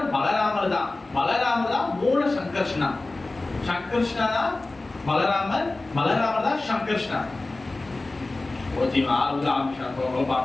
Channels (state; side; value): quieter; right; 3.1 dB